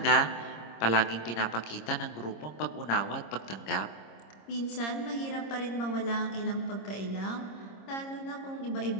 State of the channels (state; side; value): late; right; 26 ms